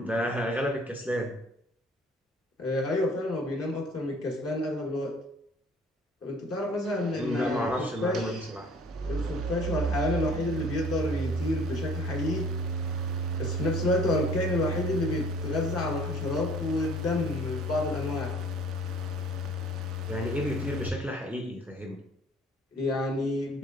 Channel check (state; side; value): normal; both; correlation 0.52